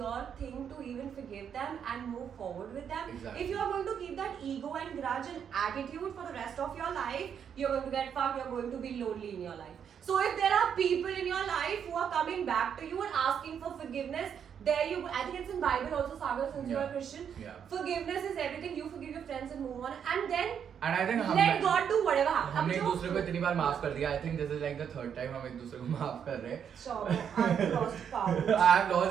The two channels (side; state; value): left; quieter; 8.0 dB